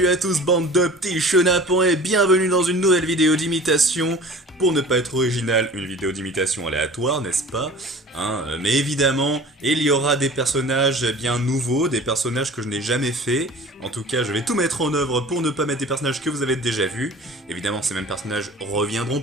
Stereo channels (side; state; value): both; normal; correlation 0.42